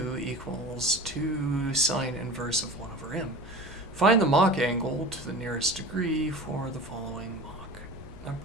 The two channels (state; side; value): normal; both; correlation 0.36